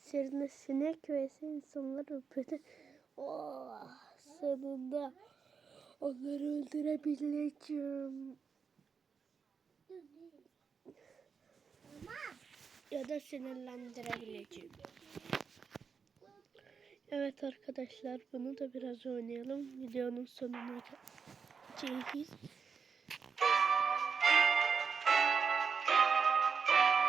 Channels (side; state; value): left; quieter; 5.9 dB